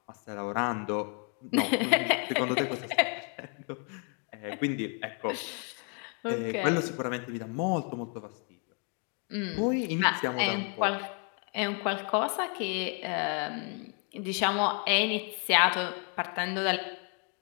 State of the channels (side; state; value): right; quieter; 38.1 dB